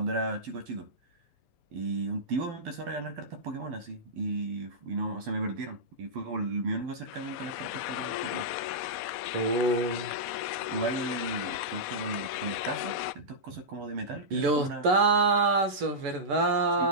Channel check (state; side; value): late; left; 7.0 ms